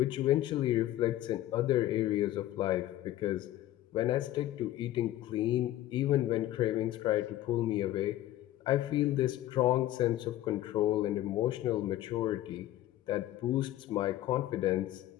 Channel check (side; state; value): right; quieter; 14.2 dB